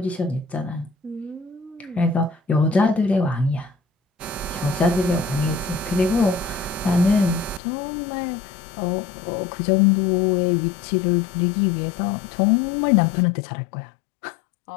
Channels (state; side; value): drops out; right; at 7.6 s